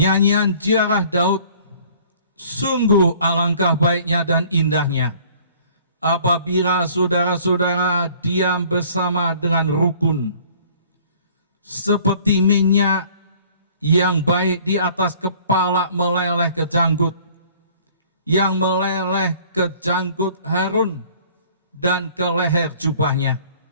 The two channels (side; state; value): both; inverted; correlation -0.53